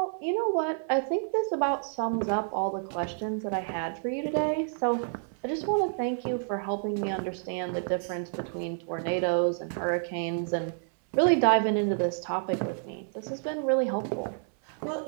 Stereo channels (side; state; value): left; silent; 58 dB below the other